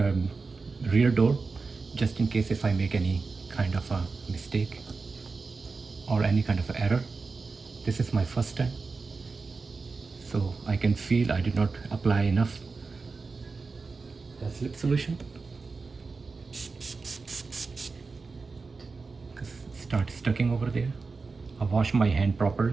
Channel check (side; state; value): left; quieter; 4.3 dB